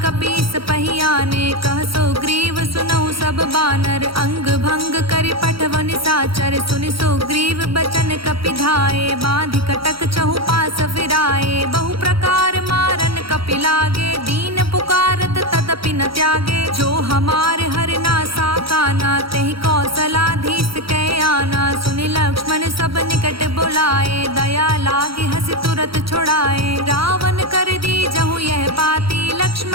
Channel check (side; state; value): left; late; 0.75 ms